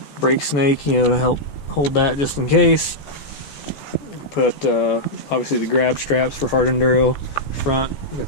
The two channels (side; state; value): right; late; 14 ms